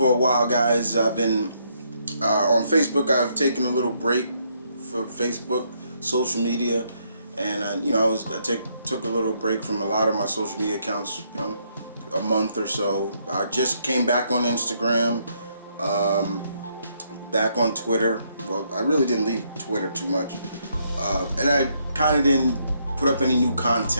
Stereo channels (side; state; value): both; inverted; correlation -0.74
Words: a while, guys. I've been on Facebook. I've taken a little break for Facebook, social media, and took a little break from a lot of my social media accounts. A month or so. I just came back on Instagram, back on Twitter. Well, I really didn't leave Twitter too much, and I kind of didn't put up any new